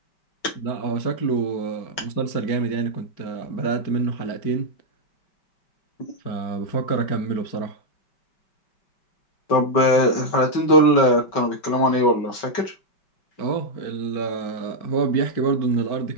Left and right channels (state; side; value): late; right; 5.3 ms